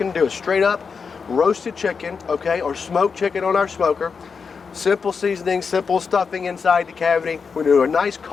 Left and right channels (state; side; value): quieter; right; 5.5 dB